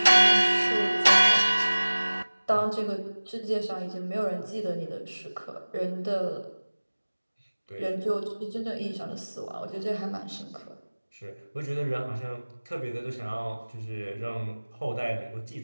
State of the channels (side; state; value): both; inverted; correlation -1.00